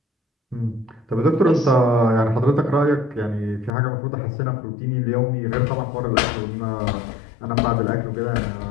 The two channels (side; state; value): right; drops out; at 3.7 s